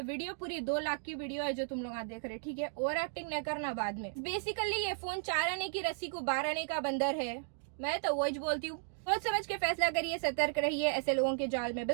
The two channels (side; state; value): left; silent; digital silence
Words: वीडियो पूरी 2 लाख की वीडियो है जो तुम लोग देख रहे, ठीक है। ओवर एक्टिंग नहीं करना बाद में। बेसिकली ये फोन 4 आने की रस्सी को 12 आने का बंदर है, मैं तो वही बोलती हूँ। सोच समझ के फैसला करिए, सतर्क रहिए, ऐसे लोगों के जाल में